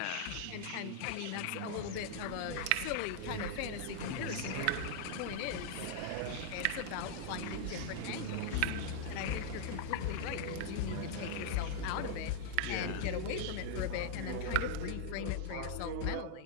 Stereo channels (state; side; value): different; both; correlation -0.01